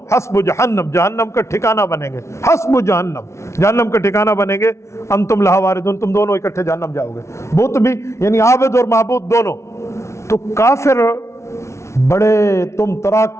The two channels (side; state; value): right; late; 0.13 ms